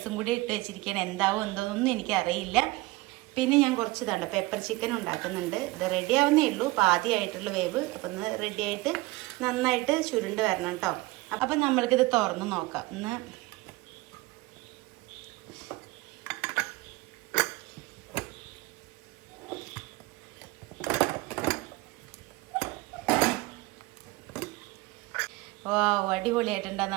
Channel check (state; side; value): quieter; left; 21.5 dB